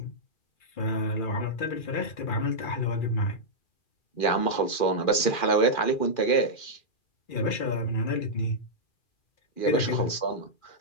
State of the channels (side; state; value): right; late; 2.4 ms